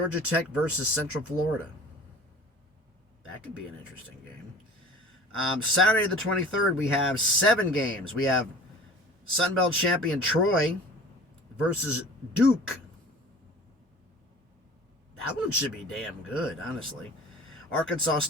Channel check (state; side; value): normal; both; correlation 0.42